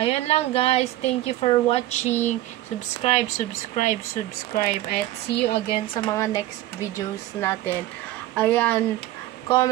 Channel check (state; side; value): quieter; left; 15.4 dB